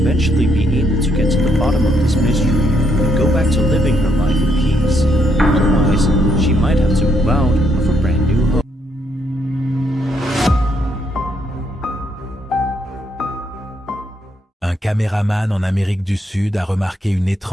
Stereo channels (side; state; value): both; normal; correlation 0.73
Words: be able to get to the bottom of this mystery and go back to living her life in peace. Otherwise, she might have to move out of a brand new home. Un caméraman en Amérique du Sud a remarqué une